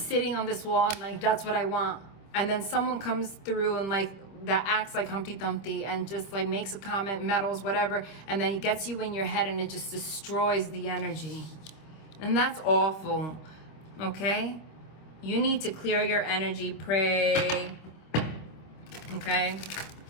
on this wall and like, that's what I want. And then someone comes through and like, that acts like Humpty Dumpty and just like makes a comment, meddles, whatever, and then it gets you in your head and it just destroys the energy. And that's awful, okay? You need to clear your energy, pray, okay?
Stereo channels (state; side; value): late; right; 26 ms